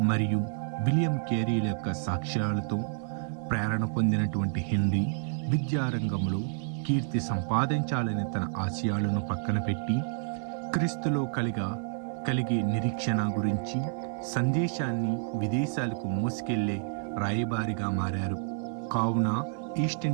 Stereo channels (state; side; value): silent; left; 58 dB below the other